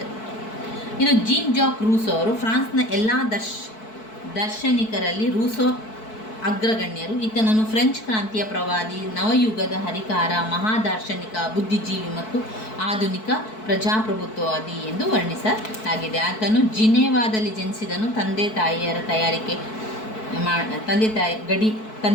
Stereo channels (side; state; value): right; late; 4.6 ms